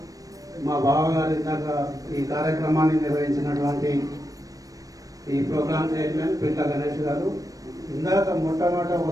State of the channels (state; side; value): late; left; 0.17 ms